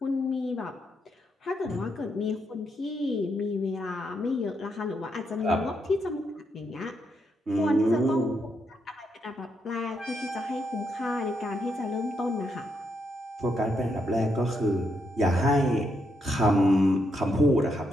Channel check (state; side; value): normal; both; correlation 0.79